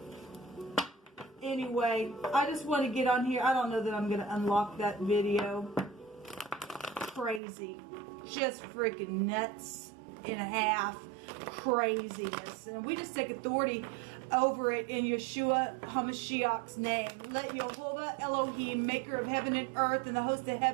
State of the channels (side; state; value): left; drops out; at 7.4 s